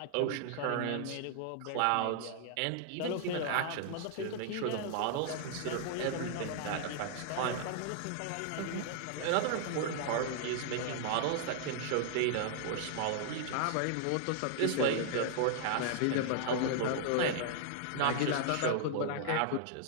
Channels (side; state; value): both; different; correlation -0.01